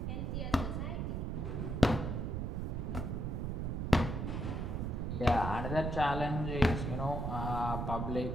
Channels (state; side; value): noise; right; rumble, 2 dB below the sound